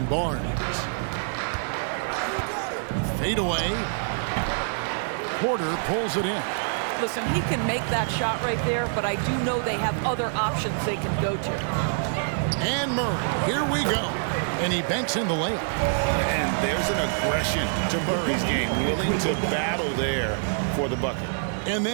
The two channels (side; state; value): left; silent; 61 dB below the other